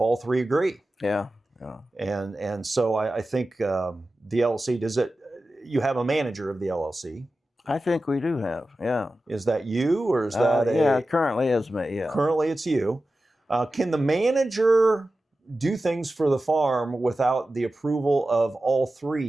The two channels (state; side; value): normal; both; correlation 0.94